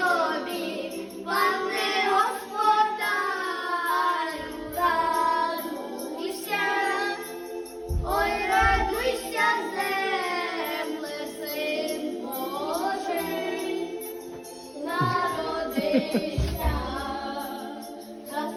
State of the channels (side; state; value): both; identical; correlation 1.00